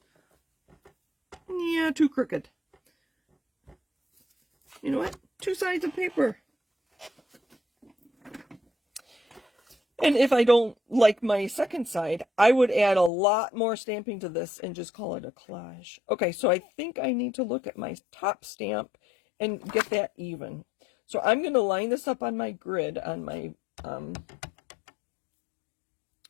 Yeah, too crooked. You know what? 2 sides of paper. And if I don't like my second side, I would add a lot more stamping to this and just call it a collage. Okay, so I think I need to look at my top stamp and get that even. So I'm going to line this up on my grid on my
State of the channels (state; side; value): drops out; right; at 13.1 s